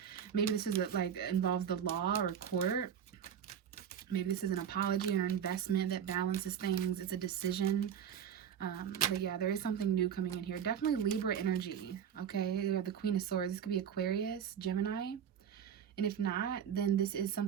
Maybe this is like involves the law or court. Maybe this is an apology or investment that balances things. It's a decision. But yeah, there is something new coming in here. Definitely Libra energy. Okay, you have the Queen of Swords. This could be Aquarius, Gemini. And if not, then this is some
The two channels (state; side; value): quieter; left; 8.4 dB